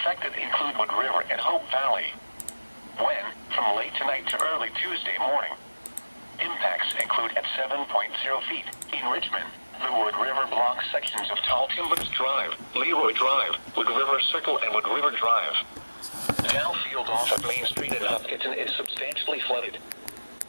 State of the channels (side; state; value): both; inverted; correlation -1.00